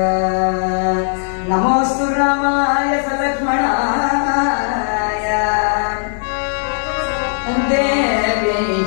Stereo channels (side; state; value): right; silent; digital silence